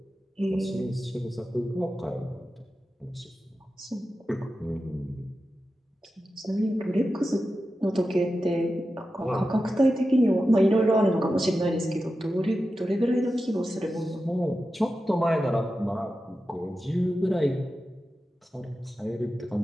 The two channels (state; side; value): normal; both; correlation 0.92